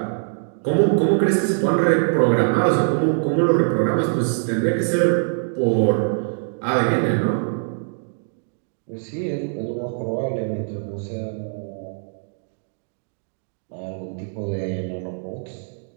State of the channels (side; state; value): left; silent; 64 dB below the other